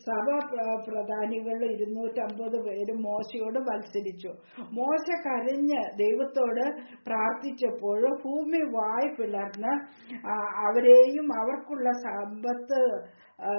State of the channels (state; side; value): inverted; both; correlation -1.00